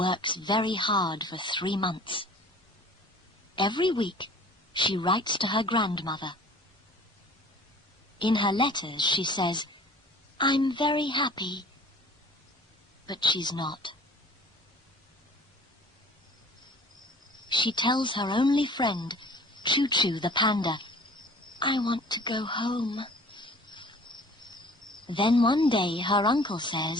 very hard for 3 months. Every week, she writes to her grandmother. In her letters, she says, "I'm very happy," but she's not. She tells her only friend, Choo Choo the panda, "I want to go home." Then one day her uncle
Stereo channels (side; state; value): both; normal; correlation 0.48